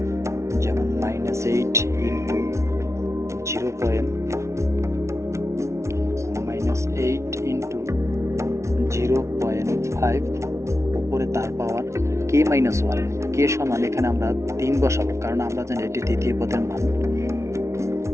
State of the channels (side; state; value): left; late; 0.14 ms